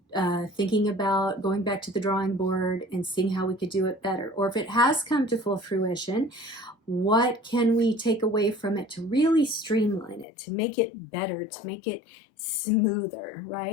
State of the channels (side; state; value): right; drops out; at 10.2 s